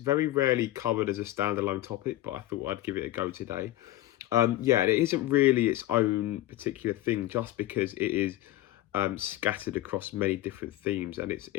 rarely covered as a standalone topic, but I thought I'd give it a go today. It isn't really its own particular thing just because it is scattered across many different themes, and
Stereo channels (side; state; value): right; quieter; 15.3 dB